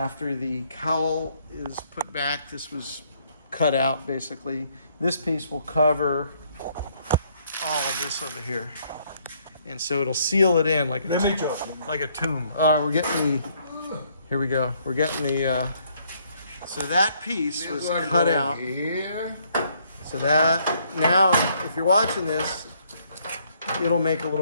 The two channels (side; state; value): both; inverted; correlation -0.68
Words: the cowl is put back. This was cut out basically. This piece will cover all of this over here, and so it'll seal it in like a tomb. We're getting the. Here we go. We're getting the. So that piece was cut out. Here. So that, now, if you're watching this, it'll make a